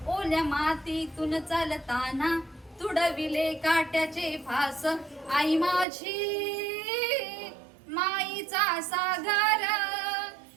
ओल्या मातीतून चालताना, तुडविले काट्याचे फास. आई माझी माईचा सागर,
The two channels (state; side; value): drops out; left; at 5.9 s